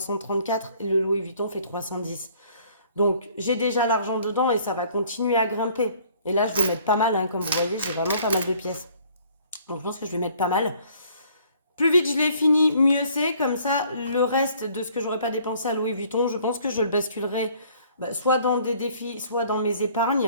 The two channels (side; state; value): both; inverted; correlation -0.58